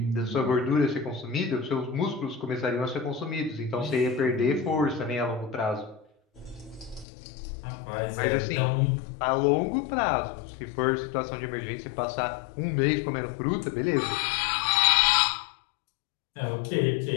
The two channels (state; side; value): drops out; right; at 7.1 s